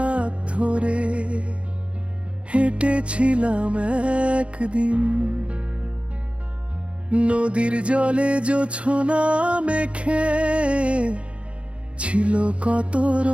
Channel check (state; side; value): late; left; 0.060 ms